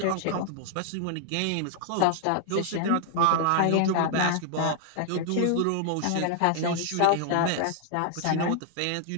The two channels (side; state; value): both; different; correlation 0.00